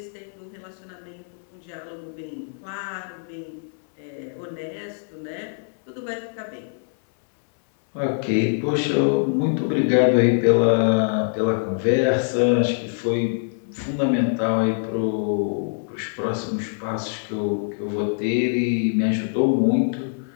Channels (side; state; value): right; silent; 61 dB below the other